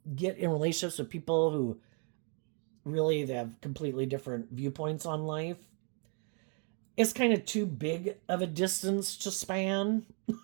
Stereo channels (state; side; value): quieter; left; 39.4 dB